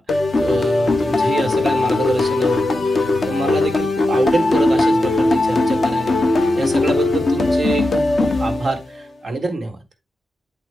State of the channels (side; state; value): both; normal; correlation 0.90